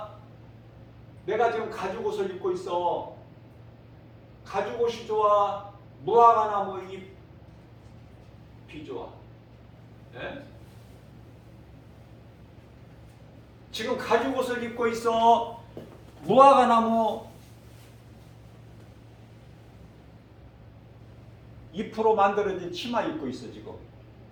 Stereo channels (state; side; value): identical; both; correlation 1.00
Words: 내가 지금 가죽옷을 입고 있어. 가죽옷이 좋아? 무화과나무 잎이 좋아? 네? 지금 가죽옷을 입고 있어? 무화과나무 잎으로 만들어진 치마 입고 있어. 지금